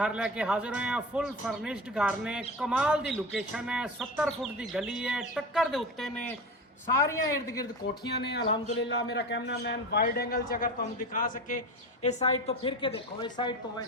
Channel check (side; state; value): both; normal; correlation 0.28